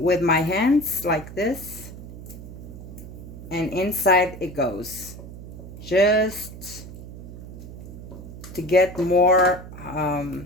with my hands like this. And inside it goes. Just to get more, oh,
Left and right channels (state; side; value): noise; right; hum, 13 dB below the sound